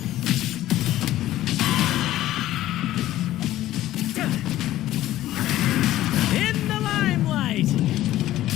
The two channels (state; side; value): quieter; right; 14.4 dB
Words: In the limelight.